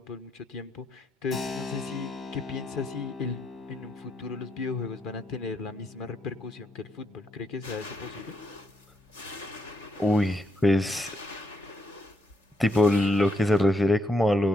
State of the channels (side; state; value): both; normal; correlation 0.78